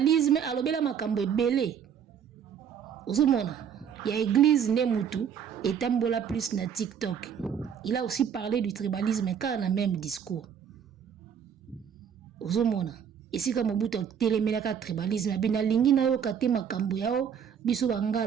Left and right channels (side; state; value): left; quieter; 8.0 dB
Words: alobela makambo ebele ozomona ya église ne mutu etambola plus na TikTok il a aussi parlé du tribalisme car na même discours ozomona esika Mobutu telemelaka tribalisme abina lingi na yo kate makambo yao biso